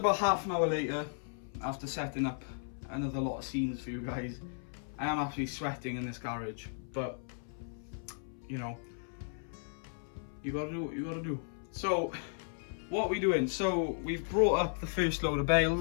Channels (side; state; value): right; silent; 54 dB below the other